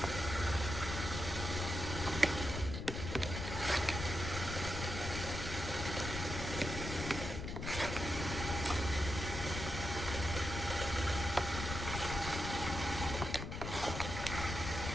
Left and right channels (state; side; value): noise; left; rumble, 5 dB below the sound